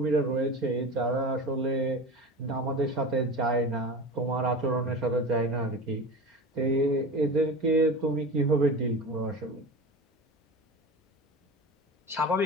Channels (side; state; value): both; normal; correlation 0.31